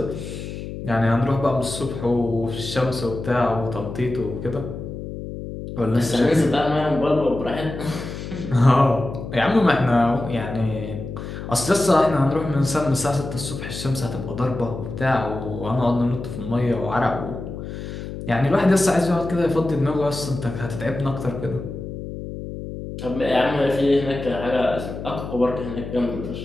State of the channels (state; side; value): noise; left; hum, 8 dB below the sound